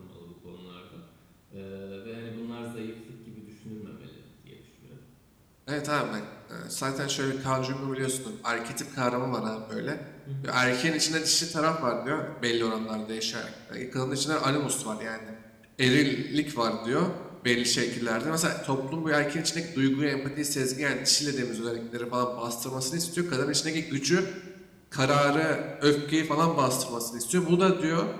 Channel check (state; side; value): identical; both; correlation 1.00